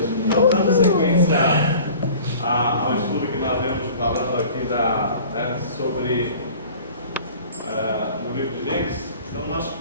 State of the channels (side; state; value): both; inverted; correlation -0.45